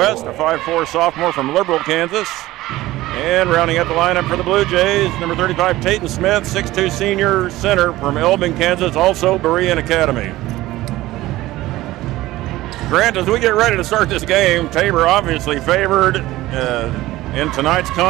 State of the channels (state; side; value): quieter; left; 17.0 dB